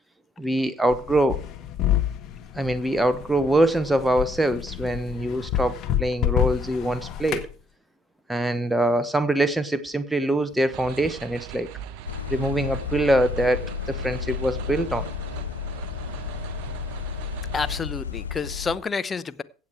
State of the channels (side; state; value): both; normal; correlation 0.69